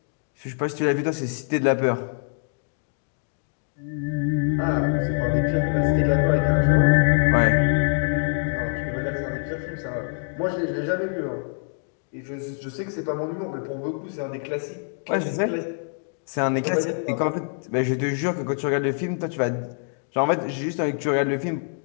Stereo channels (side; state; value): right; silent; 61 dB below the other